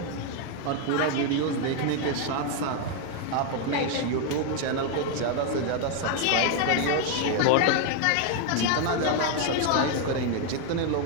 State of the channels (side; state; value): both; different; correlation 0.01